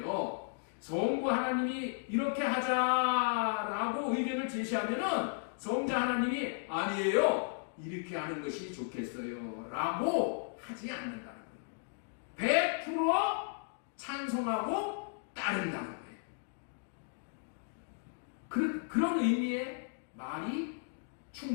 성부 하나님이 이렇게 하자라고 의견을 제시하면은 성자 하나님이 아니에요, 이렇게 하는 것이 좋겠어요 라고 하지 않는다는 거예요. 100% 찬성하고 따른다는 거예요. 그런 의미의 말이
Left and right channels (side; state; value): right; silent; digital silence